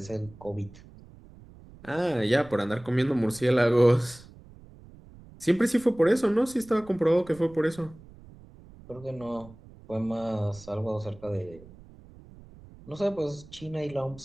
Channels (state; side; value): noise; right; rumble, 21 dB below the sound